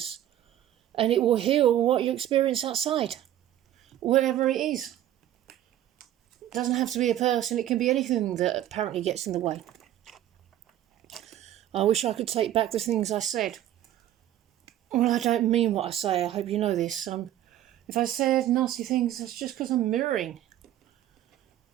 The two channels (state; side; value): quieter; left; 12.3 dB